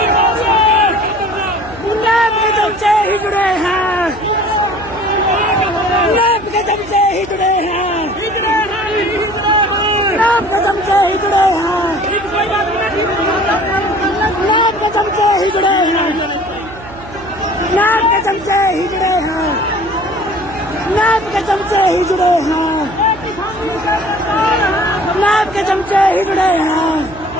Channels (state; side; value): noise; right; hum, 17 dB below the sound